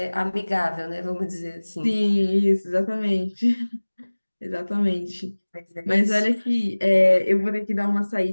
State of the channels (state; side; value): inverted; both; correlation -1.00